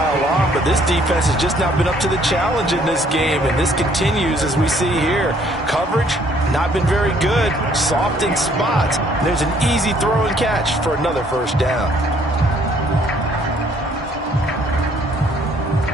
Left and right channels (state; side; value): normal; both; correlation 0.63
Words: on, but this defense has just not been up to the challenge in this game, and this continues as we see here. Coverage, not been very good. Soft in spots. There's an easy throw and catch for another first down.